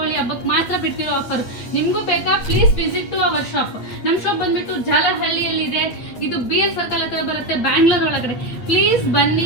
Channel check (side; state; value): right; late; 8.5 ms